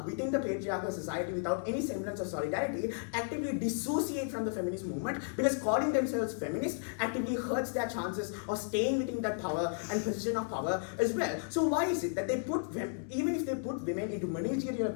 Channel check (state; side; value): silent; right; digital silence